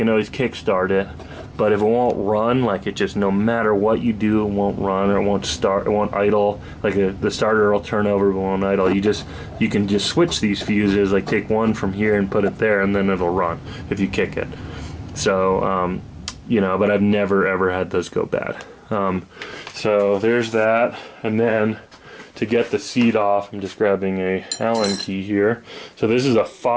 always kick start it. But if it won't run, like, it just, no matter what you do, it won't run, or it won't start, it won't idle. Like the starter will turn over but won't idle. You can just switch these fuses, like take one from here and put it there, and then it'll run if you kick it. So you know, but I've never ever had those go bad. So there's that. And then to get the seat off, I'm just grabbing a Allen key here. So this is a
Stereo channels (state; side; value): identical; both; correlation 1.00